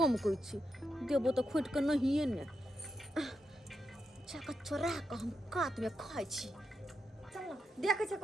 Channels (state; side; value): normal; both; correlation 0.85